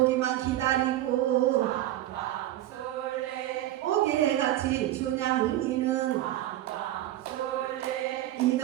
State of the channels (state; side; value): quieter; left; 14.1 dB